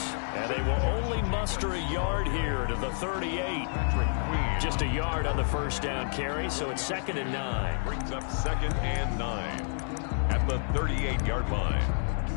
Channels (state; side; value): silent; right; 58 dB below the other